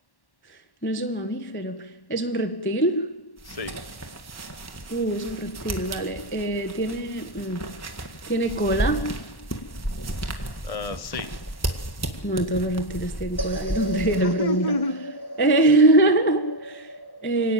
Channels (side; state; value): right; late; 1.1 ms